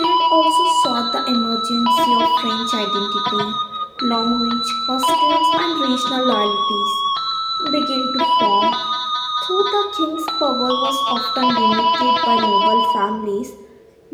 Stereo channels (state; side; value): identical; both; correlation 1.00